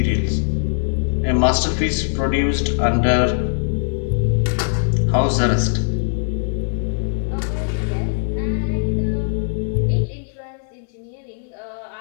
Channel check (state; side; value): silent; right; 59 dB below the other